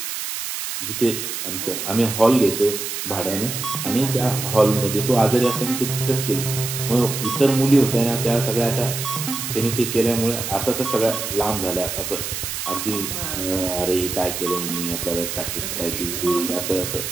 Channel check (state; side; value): noise; right; hiss, 5 dB below the sound